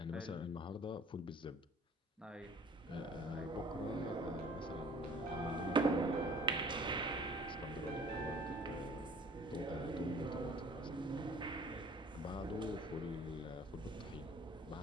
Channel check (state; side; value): normal; both; correlation 0.50